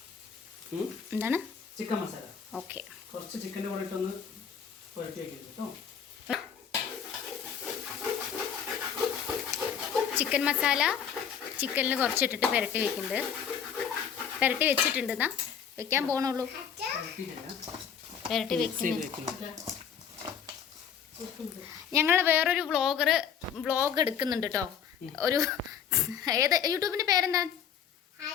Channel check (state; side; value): quieter; right; 7.8 dB